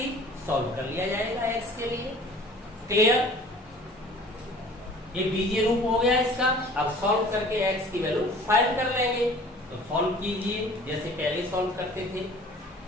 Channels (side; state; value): both; normal; correlation 0.48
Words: सॉल्व कर लिया जाएगा एक्स के लिए। क्लियर। ये बीजीय रूप हो गया इसका। अब सॉल्व करके एक्स की वैल्यू फाइंड कर लेंगे। तो सॉल्व कीजिए जैसे पहले सॉल्व करते थे।